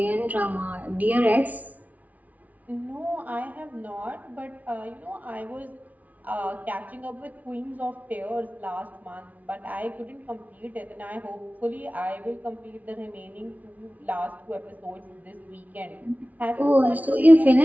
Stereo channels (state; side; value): late; left; 0.072 ms